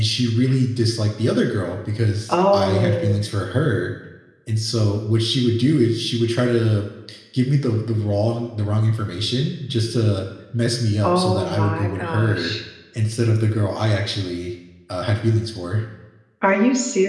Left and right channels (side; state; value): both; identical; correlation 1.00